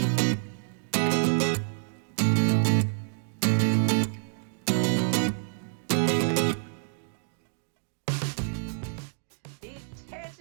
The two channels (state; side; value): silent; left; digital silence